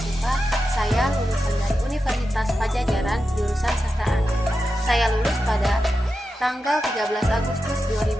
Saya lulusan dari Universitas Pajajaran jurusan Sastra Anak. Saya lulus pada tanggal 13 Agustus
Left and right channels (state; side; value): normal; both; correlation 0.90